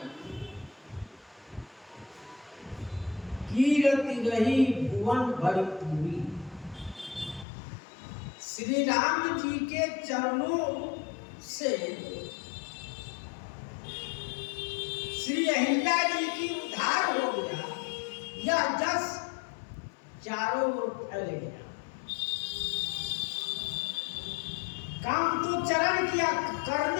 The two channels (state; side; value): drops out; right; at 7.5 s